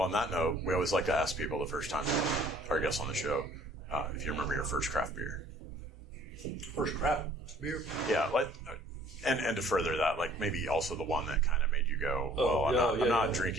on that note, we always like to ask people the first time our guests on the show if you remember your first craft beer. First craft beer? Yeah, and to further that, like maybe also the one that kind of made you go, I'm not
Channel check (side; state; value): both; normal; correlation 0.55